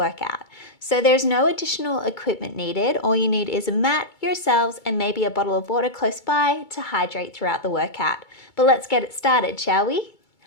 So there's no additional equipment needed. All you need is a mat, yourselves, and maybe a bottle of water close by to hydrate throughout the workout. But let's get it started, shall we?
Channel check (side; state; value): right; late; 2.3 ms